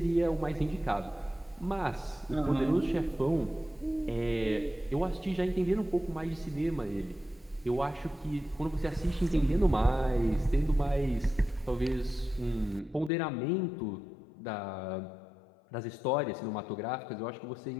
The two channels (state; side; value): drops out; right; at 13.1 s